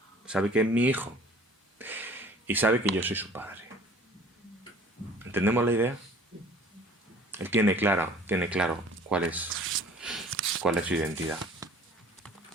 Sabe que es mi hijo. Y sabe que yo soy su padre. ¿Entendemos la idea? Él tiene claro cuál es su identidad.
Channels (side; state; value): both; normal; correlation 0.50